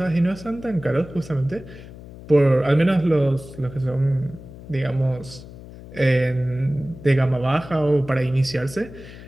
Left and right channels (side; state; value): left; noise; hum, 16 dB below the sound